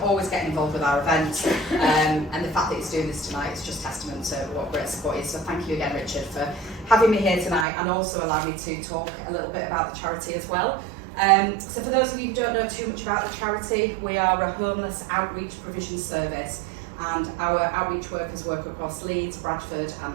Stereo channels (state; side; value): drops out; left; at 7.7 s